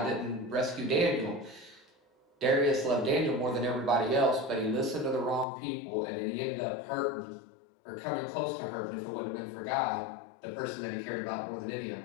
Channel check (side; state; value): right; drops out; at 5.5 s